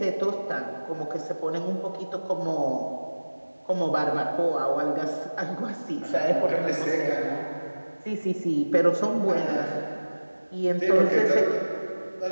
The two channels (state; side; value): inverted; both; correlation -1.00